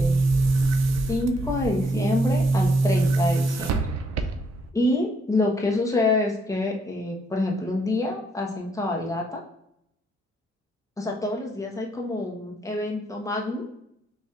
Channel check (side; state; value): both; normal; correlation 0.72